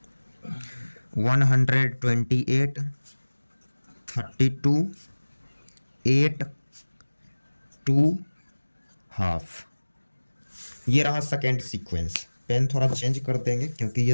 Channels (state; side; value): inverted; both; correlation -1.00